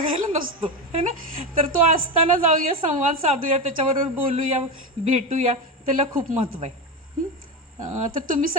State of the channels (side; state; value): both; normal; correlation 0.17